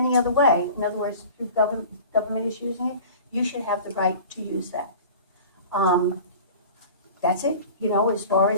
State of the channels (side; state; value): both; inverted; correlation -0.41